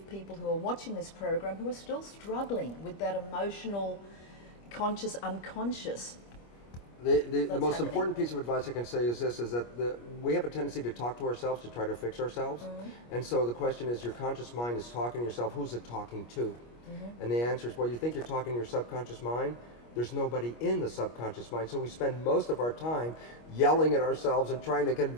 people who are watching this program who are still struggling with that emotional, conscious, unconscious? The most important piece of advice I can say is this, is that we have a tendency to talk to ourselves, to try to fix ourselves. And so the question is, your conscious mind is talking to yourself, who's it talking to? And the answer is, well, you think you're talking to your subconscious mind? There's nobody in the subconscious mind. So we spend most of our time yelling at ourselves and trying to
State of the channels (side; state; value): right; late; 25 ms